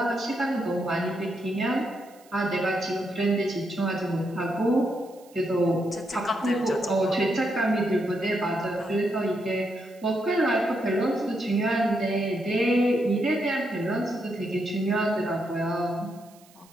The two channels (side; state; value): right; noise; hiss, 27 dB below the sound